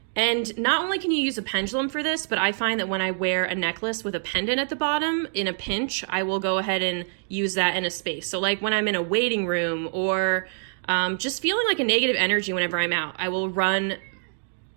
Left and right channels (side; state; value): left; silent; digital silence